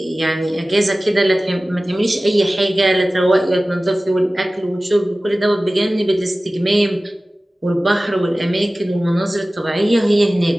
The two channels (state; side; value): normal; both; correlation 0.97